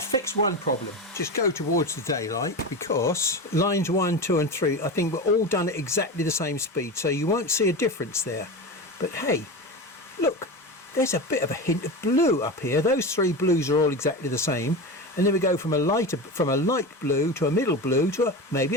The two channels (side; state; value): both; normal; correlation 0.24